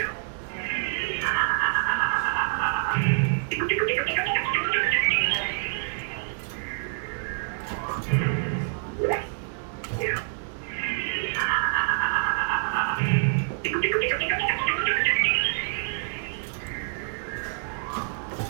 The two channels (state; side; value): silent; left; 60 dB below the other